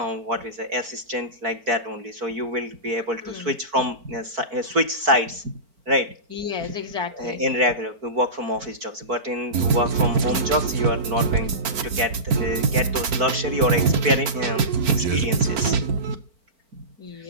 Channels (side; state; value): left; late; 4.4 ms